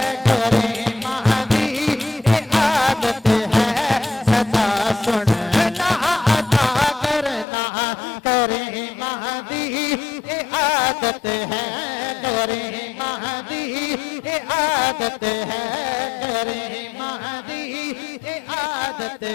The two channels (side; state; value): right; drops out; at 7.5 s